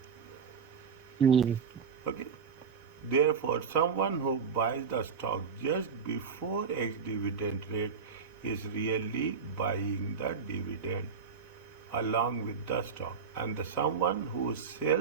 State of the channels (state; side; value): quieter; left; 6.0 dB